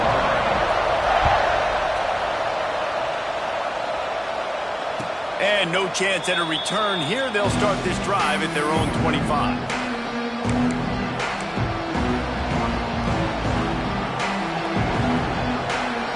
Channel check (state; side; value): identical; both; correlation 1.00